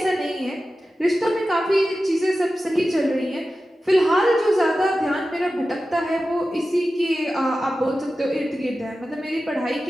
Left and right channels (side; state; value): both; normal; correlation 0.94